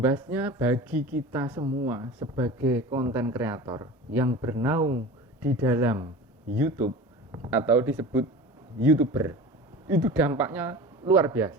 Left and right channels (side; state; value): both; normal; correlation 0.35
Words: bagi kita semua sebagai konten kreator yang bernaung di dalam YouTube atau disebut YouTuber, itu dampaknya luar